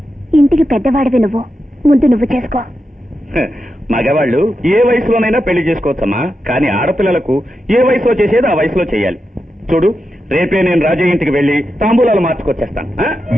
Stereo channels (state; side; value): normal; both; correlation 0.88